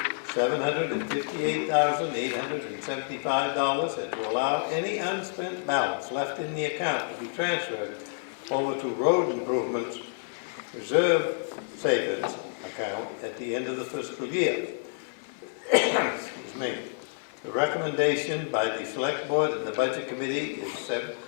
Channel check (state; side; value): silent; right; 59 dB below the other